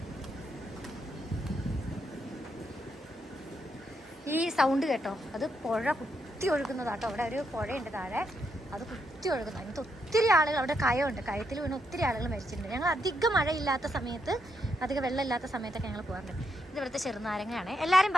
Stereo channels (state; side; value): normal; both; correlation 0.79